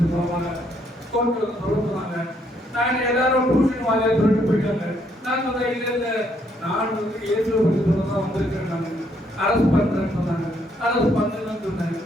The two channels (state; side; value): normal; both; correlation 0.71